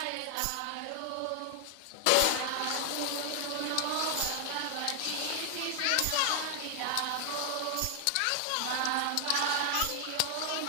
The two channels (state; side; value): different; both; correlation 0.00